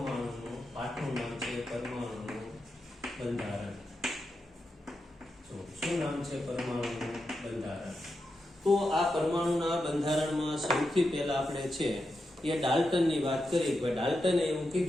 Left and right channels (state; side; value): normal; both; correlation 0.87